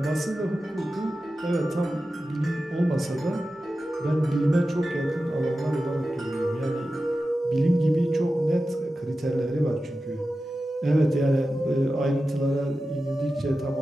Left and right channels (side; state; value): both; normal; correlation 0.93